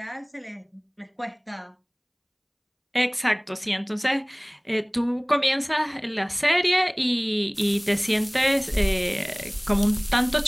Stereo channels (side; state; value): both; identical; correlation 1.00